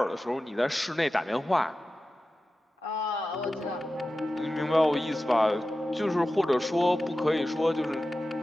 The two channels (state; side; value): normal; both; correlation 0.94